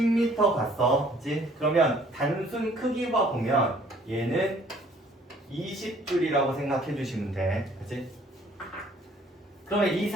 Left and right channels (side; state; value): both; normal; correlation 0.58